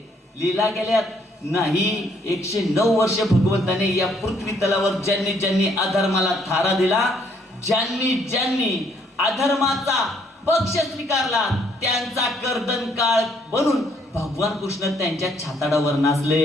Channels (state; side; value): normal; both; correlation 0.67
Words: लीला केल्यात? नाही. 109 वर्ष भगवंताने या पृथ्वी तलावर ज्यांनी ज्यांनी अधर्माला थारा दिला, ज्यांनी ज्यांनी अधर्माचा पक्ष स्वीकारला, त्यांचा कर्दन काळ बनून भगवान कृष्ण त्यांच्या छाताडावर